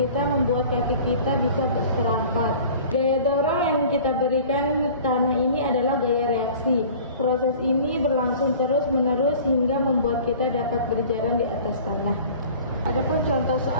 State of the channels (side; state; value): both; inverted; correlation -0.45